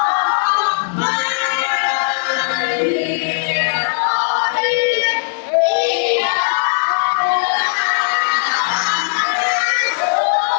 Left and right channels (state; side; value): silent; right; digital silence